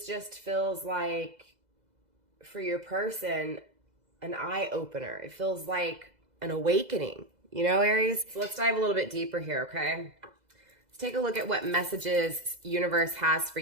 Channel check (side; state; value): left; late; 2.0 ms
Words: just feels like, for your person, an eye opener. It feels like an awakening, you know, Aries? So let's dive a little bit deeper here, okay? Let's take a look at what messages universe has for